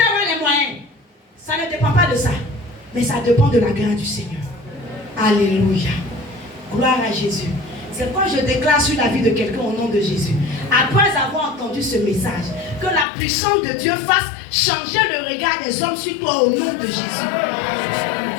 avoir les moyens. Ça ne dépend pas de ça. Mais ça dépend de la grâce du Seigneur. Alléluia. Gloire à Jésus. C'est quand je déclare sur la vie de quelqu'un au nom de Jésus, après avoir entendu ce message, que la puissance de Dieu fasse changer le regard des hommes sur toi au nom de Jésus.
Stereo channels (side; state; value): right; drops out; at 13.1 s